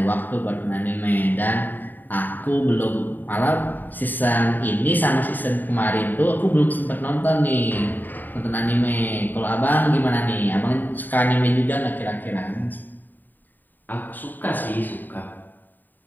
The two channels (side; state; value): right; late; 0.089 ms